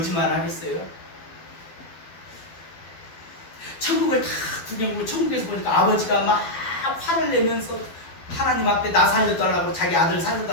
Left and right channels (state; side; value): late; right; 12 ms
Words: 하겠어요? 천국을 다 구경하고 천국에서 보니까 아버지가 막 화를 내면서 하나님 앞에 나 살려달라고 자기 아들